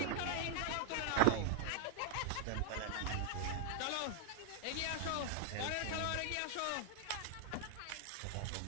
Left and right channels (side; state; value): both; different; correlation 0.00